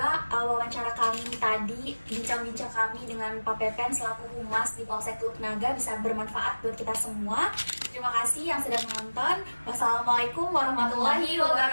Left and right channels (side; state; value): both; inverted; correlation -1.00